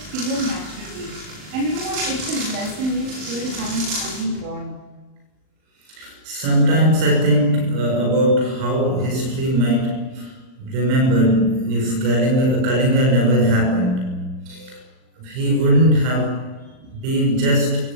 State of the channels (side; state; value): left; late; 39 ms